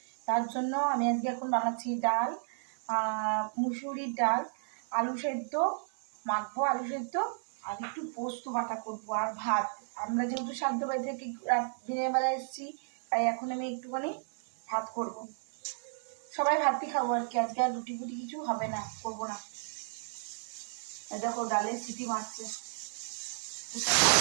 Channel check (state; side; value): silent; left; digital silence